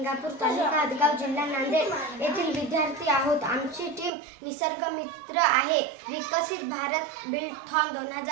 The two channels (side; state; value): left; drops out; at 4.1 s